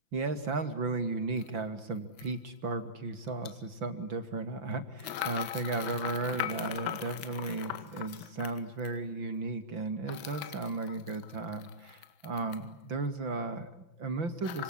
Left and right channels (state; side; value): late; left; 5.9 ms